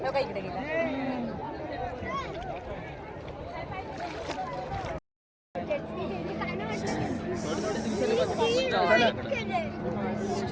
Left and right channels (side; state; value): both; identical; correlation 1.00